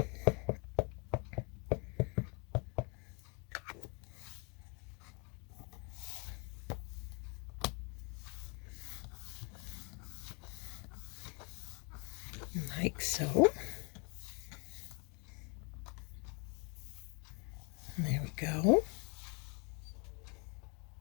Like so. There we go.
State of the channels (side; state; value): right; quieter; 33.6 dB